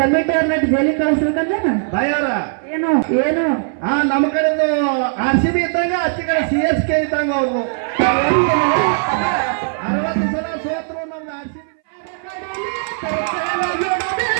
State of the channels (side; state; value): left; silent; 62 dB below the other